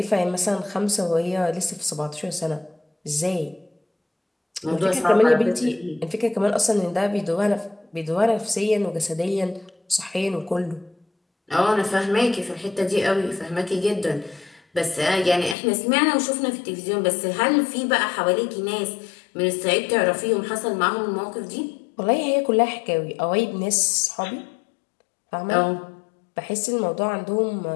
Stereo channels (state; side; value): drops out; right; at 15.6 s